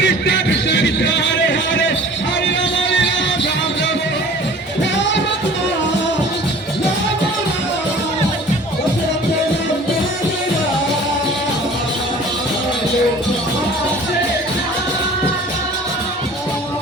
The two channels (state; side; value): normal; both; correlation 0.46